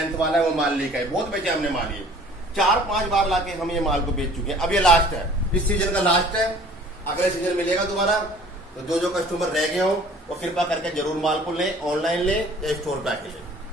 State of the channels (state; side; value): normal; both; correlation 0.50